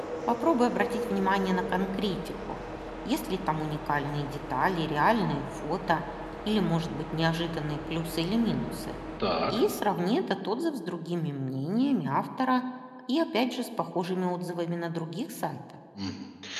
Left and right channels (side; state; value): both; identical; correlation 1.00